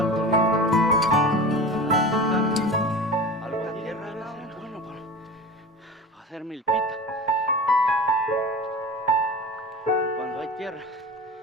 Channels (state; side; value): normal; both; correlation 0.33